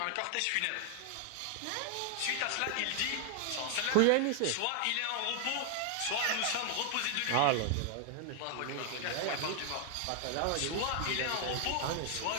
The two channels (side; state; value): both; different; correlation 0.00